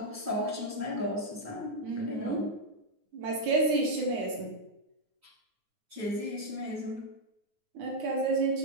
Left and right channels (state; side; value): late; left; 9.4 ms